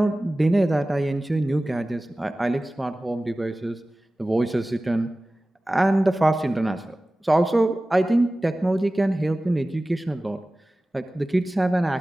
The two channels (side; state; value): both; normal; correlation 0.97